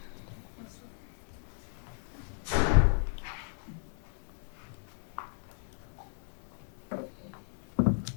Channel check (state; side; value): silent; right; 55 dB below the other